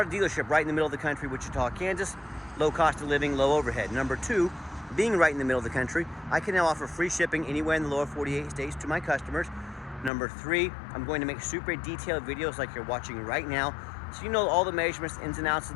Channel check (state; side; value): drops out; right; at 10.1 s